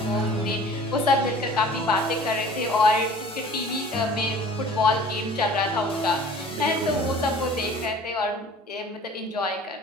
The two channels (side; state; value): both; normal; correlation 0.47